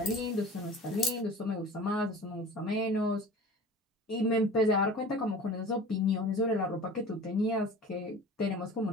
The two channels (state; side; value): normal; both; correlation 0.39